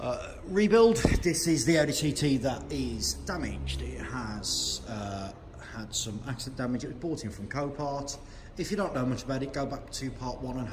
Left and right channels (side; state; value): both; identical; correlation 1.00